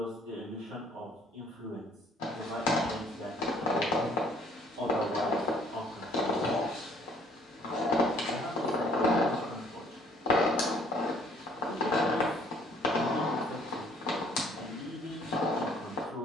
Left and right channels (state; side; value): normal; both; correlation 0.60